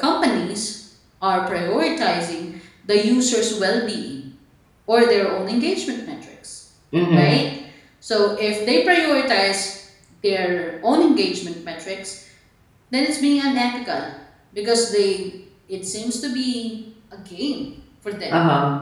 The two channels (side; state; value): both; identical; correlation 1.00